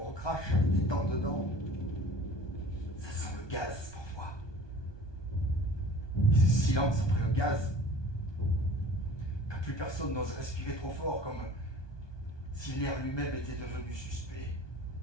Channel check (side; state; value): right; late; 1.2 ms